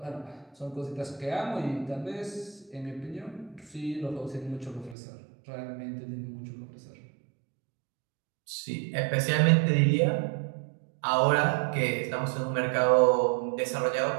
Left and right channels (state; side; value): drops out; left; at 5.0 s